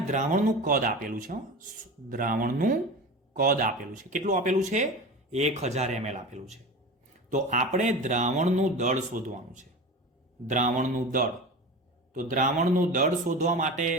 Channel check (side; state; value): both; normal; correlation 0.30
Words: દ્રાવણનું કદ આપેલું છે. દ્રાવણનું કદ આપેલું છે. કેટલું આપેલું છે? 1000 ml આપેલું છે. તો આપણે દ્રાવણનું દળ શોધવાનું છે. દ્રાવણનું દળ. તો દ્રાવણનું દળ શોધવા માટે